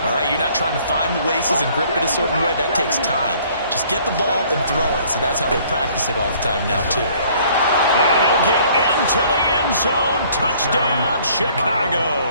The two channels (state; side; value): inverted; both; correlation -0.58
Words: All right? You're not trying to find the laces and grip it a certain way. That takes time. Just get the ball and throw it. So that's how they practice it all the time now, too. And he'll get into the end zone. Touchdown,